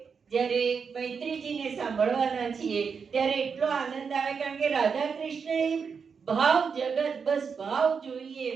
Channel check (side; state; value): left; quieter; 5.9 dB